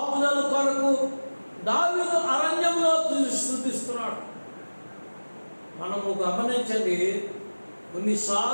కొరకు దావీదు అరణ్యంలో స్తుతిస్తున్నాడు. మనము గమనించండి,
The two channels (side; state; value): both; inverted; correlation -1.00